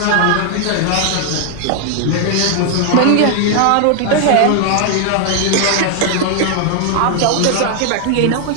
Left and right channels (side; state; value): both; different; correlation 0.00